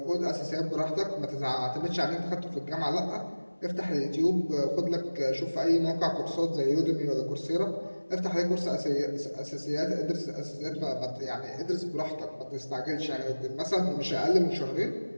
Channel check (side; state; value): both; inverted; correlation -1.00